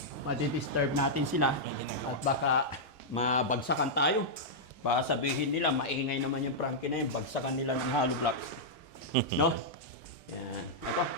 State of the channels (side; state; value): left; late; 2.3 ms